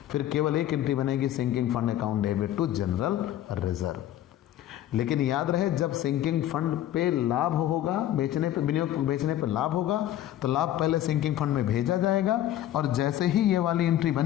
फिर केवल एक एंट्री बनेगी, sinking fund account debit to general reserve. लेकिन याद रहे जब सिंकिंग फंड पे लाभ होगा, बेचने पे, विनियोग बेचने पे लाभ होगा तो लाभ पहले सिंकिंग फंड में भेजा जाएगा, और जैसे ही ये वाली एंट्री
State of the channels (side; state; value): right; quieter; 12.6 dB